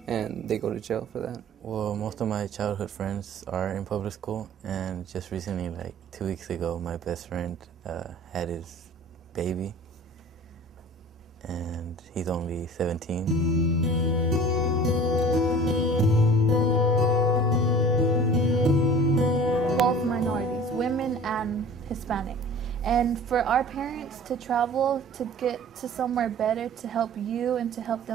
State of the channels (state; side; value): normal; both; correlation 0.44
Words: and they go to jail for that. Well, most of my childhood friends are in public school, and just recently, like 2 weeks ago, my best friend had his baby, and he's only 17. Both minorities, women and Hispanic. And for our parents to travel to get to somewhere better to help you and to help